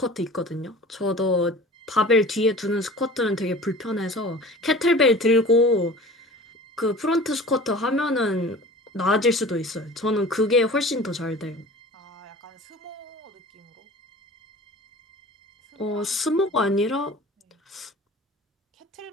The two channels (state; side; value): normal; both; correlation 0.41